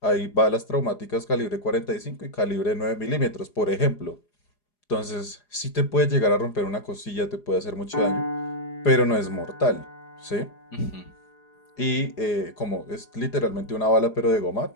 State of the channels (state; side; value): late; right; 4.9 ms